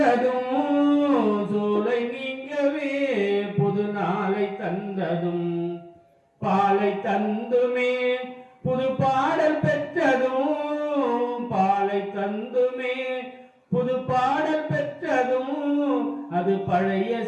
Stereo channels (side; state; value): both; identical; correlation 1.00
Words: சூலை நீங்கவே புது நாளை தந்ததும், பாலை தந்துமே புது பாடல் பெற்றதும், பாலை தந்துமே புது பாடல் பெற்றதும், அது பழைய